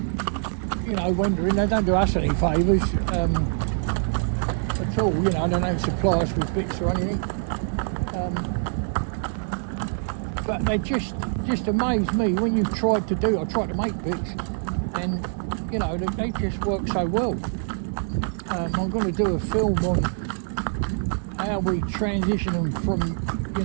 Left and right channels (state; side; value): silent; left; 62 dB below the other